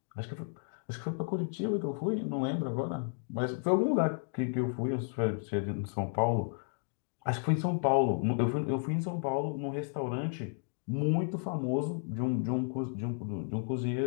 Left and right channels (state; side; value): silent; right; 56 dB below the other